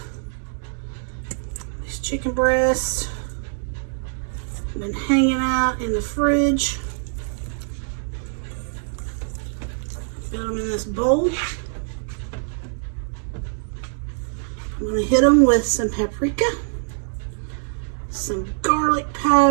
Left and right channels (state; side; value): silent; left; digital silence